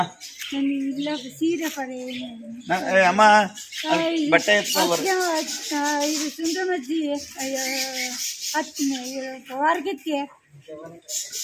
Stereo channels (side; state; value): both; identical; correlation 1.00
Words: ಸೀರೆ ಪಡೆ ಅಮ್ಮ, ಬಟ್ಟೆ ಎತ್ಕೊ. ಇದು ಸುಂದರಮಜ್ಜಿ ವಾರ್ಗಕ್ಕೆ